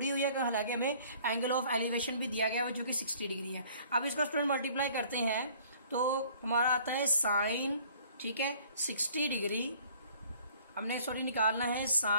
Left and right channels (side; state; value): both; inverted; correlation -0.55